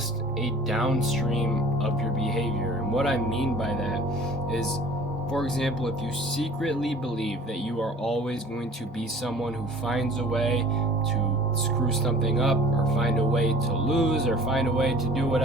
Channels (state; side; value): normal; both; correlation 0.48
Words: a downstream of your behavior. And what I mean by that is, for example, if you secretly believe that you are always going to be someone who finds a way to screw something up, or find a way to lose, or find a way to do